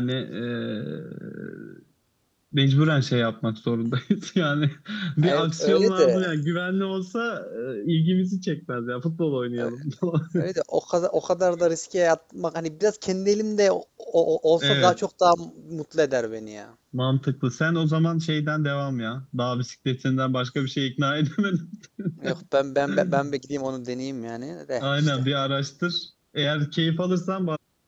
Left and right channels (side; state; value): both; identical; correlation 1.00